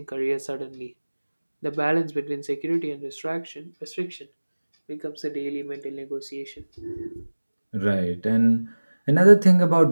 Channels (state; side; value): inverted; both; correlation -1.00